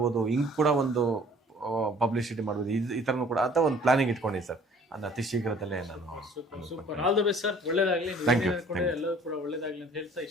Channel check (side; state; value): both; normal; correlation 0.53